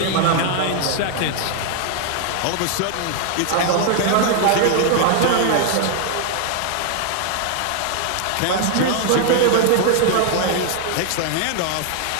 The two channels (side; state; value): both; different; correlation 0.00